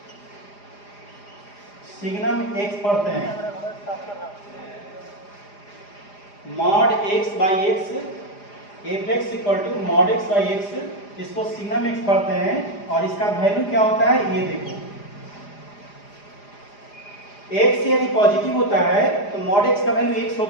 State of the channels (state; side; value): late; right; 4.9 ms